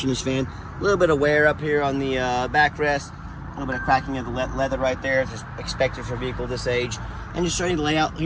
in this van. A little bit of wear up here on the backrest. A little bit of cracking of the leather right there. Just expected for a vehicle this age. And just showing the layout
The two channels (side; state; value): both; identical; correlation 1.00